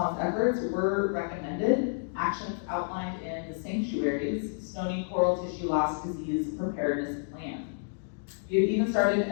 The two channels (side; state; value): right; silent; digital silence